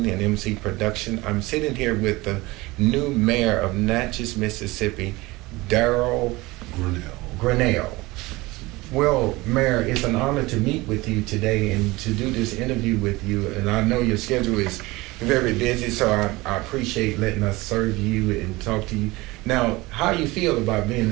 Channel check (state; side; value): quieter; left; 21.4 dB